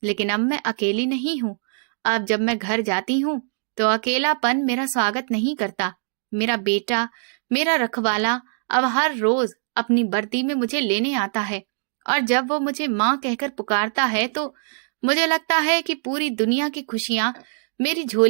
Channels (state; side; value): silent; left; digital silence